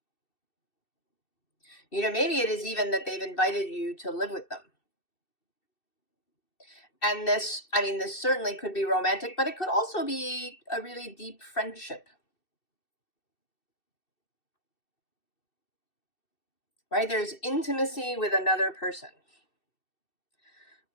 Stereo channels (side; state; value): right; late; 2.6 ms